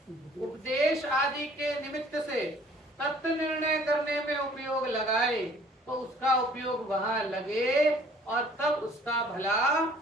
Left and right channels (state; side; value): normal; both; correlation 0.55